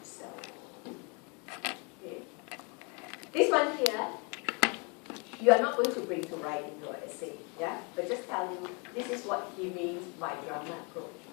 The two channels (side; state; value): right; quieter; 33.5 dB